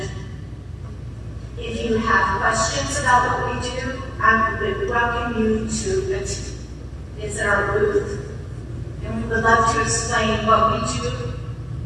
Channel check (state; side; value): identical; both; correlation 1.00